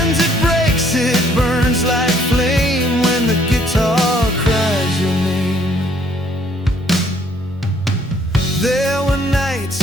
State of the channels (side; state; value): both; normal; correlation 0.64